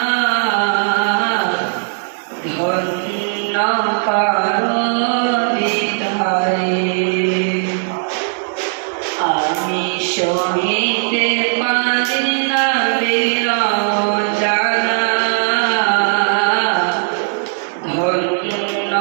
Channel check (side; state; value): left; silent; 62 dB below the other